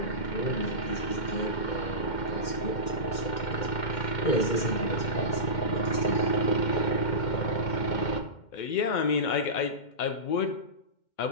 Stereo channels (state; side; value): late; right; 2.1 ms